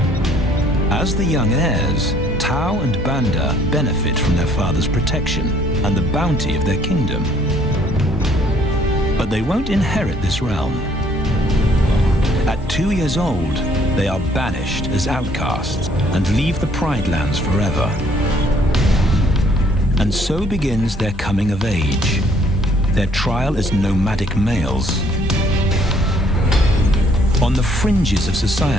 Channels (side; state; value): both; normal; correlation 0.62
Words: As the young heirs, Tao and Banda benefit from their father's protection and the bounty of their kingdom. But they won't inherit this realm. At 2 years old, they are banished as outcasts and leave the Pride lands forever. And so begins their coming of age, their trial as nomadic males. On the fringes of